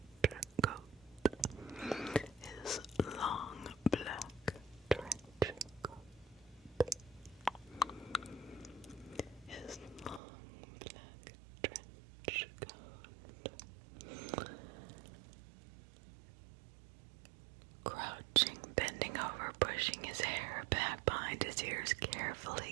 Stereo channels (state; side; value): drops out; left; at 10.2 s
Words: coat. His long black trench coat. His long black trench coat. Crouching, bending over, pushing his hair back behind his ears, carefully